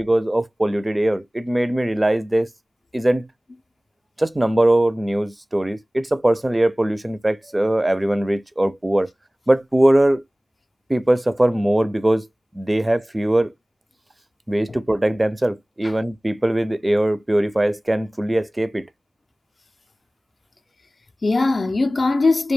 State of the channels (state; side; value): normal; both; correlation 0.98